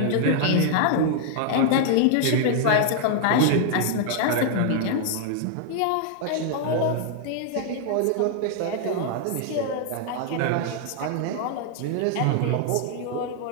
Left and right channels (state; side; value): different; both; correlation -0.01